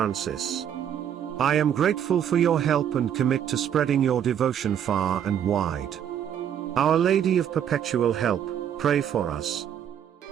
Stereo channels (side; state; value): left; quieter; 9.3 dB